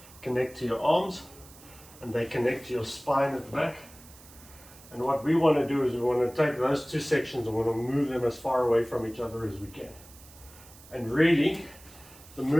connect to your arms and they connect to your spine at the back. And what we want to do is we want to take those two sections and we want to move them as far away from each other as we can. And really, the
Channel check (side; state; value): right; noise; hiss, 21 dB below the sound